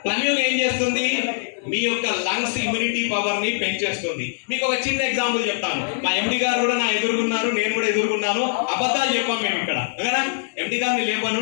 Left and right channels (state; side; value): silent; right; digital silence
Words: ప్లమ్యూన్ ఏం చేస్తుంది? మీ యొక్క లంగ్స్ ఇమ్యూనిటీ పవర్ ని పెంచేస్తుంది. మీకు ఒక చిన్న ఎగ్జాంపుల్ చెప్తాను. మా ఎండి గారు కూడా నా ఎదుర్కొన్నారు, నేను కూడా ఎదుర్కొన్నాను. అబద్ధాలు చెప్పాం మేము ఇక్కడ. ఓకేనా? ఎండి గారిని లేపాను,